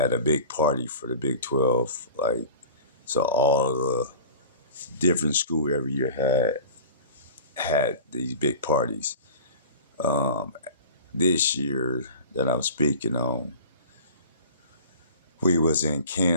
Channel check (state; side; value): inverted; both; correlation -0.40